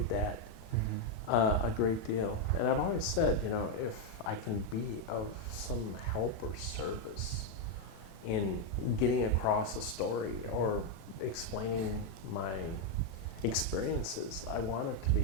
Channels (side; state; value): right; late; 37 ms